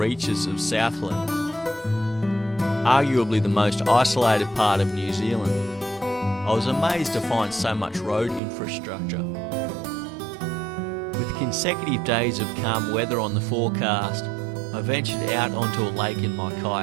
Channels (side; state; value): left; drops out; at 8.4 s